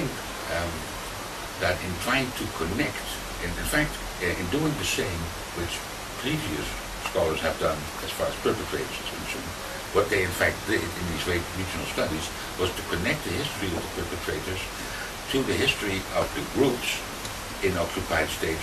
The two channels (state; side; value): identical; both; correlation 1.00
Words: that in trying to connect, in fact, in doing the same which previous scholars have done as far as perpetrators is concerned, what they in fact did in these regional studies was to connect the history of the perpetrators to the history of the groups in occupied states